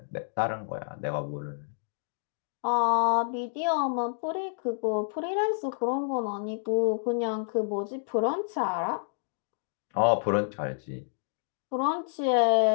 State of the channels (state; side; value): silent; right; digital silence